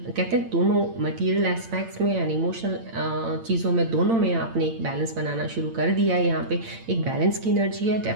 कहते हैं दोनों मटेरियल एस्पेक्ट्स में एंड इमोशनल चीज़ों में, दोनों में आपने एक बैलेंस बनाना शुरू कर दिया है। यहाँ पे एक बैलेंस की एनर्जी है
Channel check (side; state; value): left; late; 8.8 ms